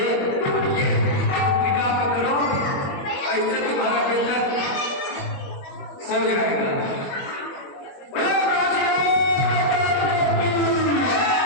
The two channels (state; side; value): late; right; 21 ms